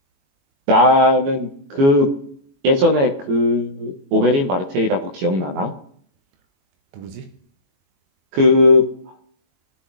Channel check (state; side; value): late; left; 22 ms